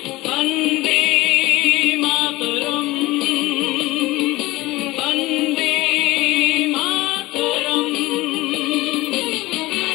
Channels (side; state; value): right; quieter; 19.7 dB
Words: বন্দে মাতরম, বন্দে মাতরম।